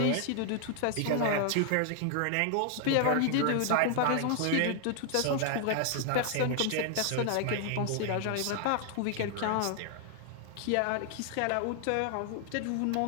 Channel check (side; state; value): both; different; correlation 0.00